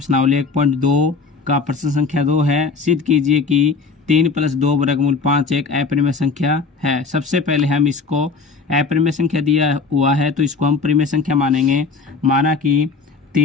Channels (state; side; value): quieter; right; 4.5 dB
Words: 1.2 का प्रश्न संख्या 2 है। सिद्ध कीजिए कि 3 + 2 वर्गमूल 5 एक अपरिमेय संख्या है। सबसे पहले हम इसको अपरिमेय संख्या दिया हुआ है तो इसको हम परिमेय संख्या मानेंगे। माना कि